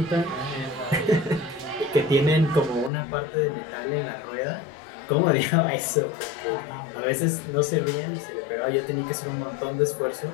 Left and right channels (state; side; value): drops out; right; at 2.9 s